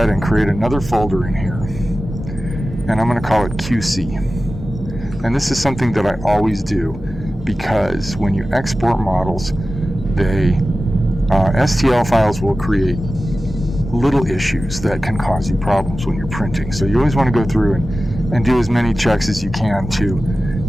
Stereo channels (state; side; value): normal; both; correlation 0.95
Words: and create another folder in here. And I'm going to call it QC. And this is something that I always do, because when you export models, they STL files will create little issues that can cause you problems when you're printing. So you always want to go through and do as many checks as you can to